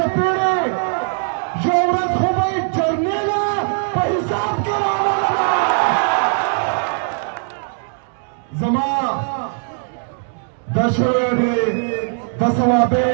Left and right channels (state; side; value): silent; left; 58 dB below the other